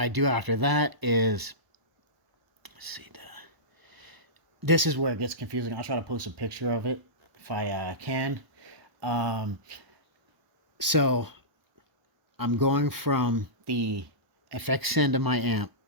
do after that is, let's see, this is where it gets confusing. I'll try to post a picture of it if I can. So I'm going from the effects end of my amp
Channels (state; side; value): late; left; 1.0 ms